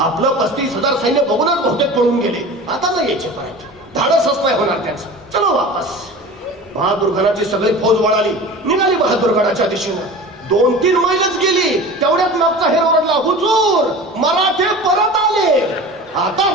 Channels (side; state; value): both; normal; correlation 0.36